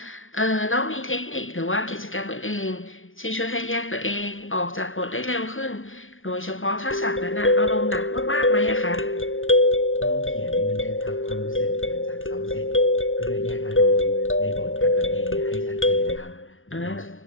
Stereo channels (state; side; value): late; right; 0.58 ms